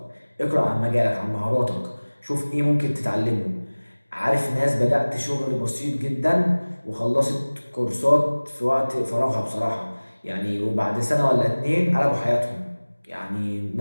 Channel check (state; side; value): inverted; both; correlation -1.00